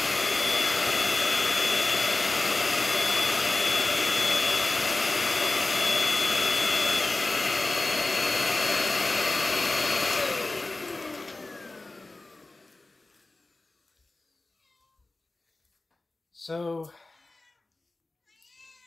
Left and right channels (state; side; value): quieter; right; 3.1 dB